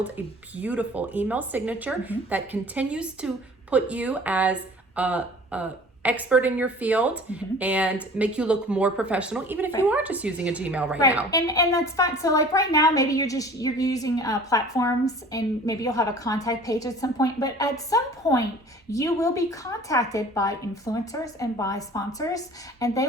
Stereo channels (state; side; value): normal; both; correlation 0.46